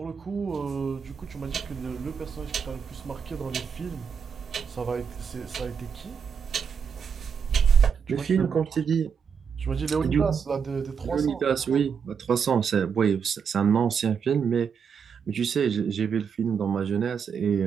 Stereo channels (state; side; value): quieter; left; 6.7 dB